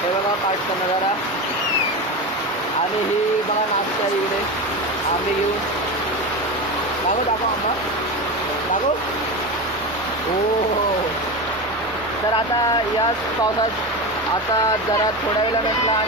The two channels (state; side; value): normal; both; correlation 0.22